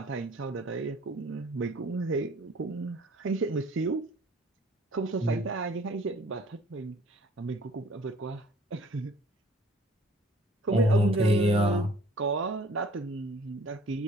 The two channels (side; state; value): both; normal; correlation 0.53